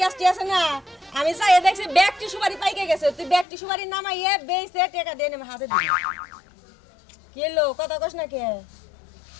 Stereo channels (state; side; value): drops out; right; at 3.5 s